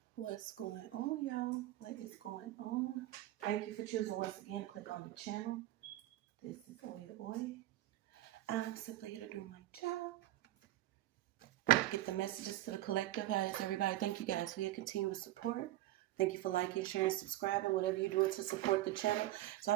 What's going on, y'all? What is going on? Thank you for choosing once again to click on the channel. This is OYAOY. I'm simply here to do my job. Get the messages to the collective. How is everybody? Thank you guys for your continuous support. Thank you for liking, sharing, subscribing, whatever you're doing to support the channel. So I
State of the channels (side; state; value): left; quieter; 15.2 dB